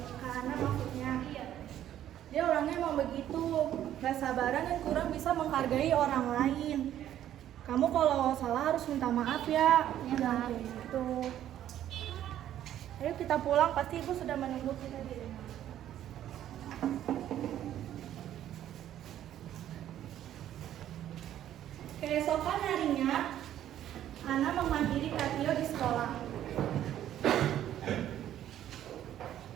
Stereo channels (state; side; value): quieter; left; 11.6 dB